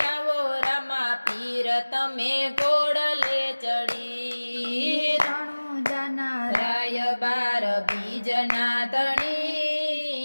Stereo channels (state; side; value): inverted; both; correlation -1.00